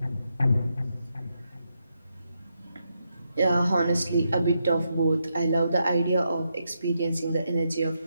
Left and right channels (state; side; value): inverted; both; correlation -0.82